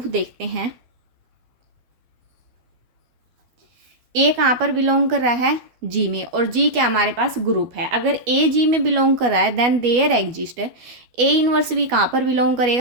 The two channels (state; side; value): late; left; 12 ms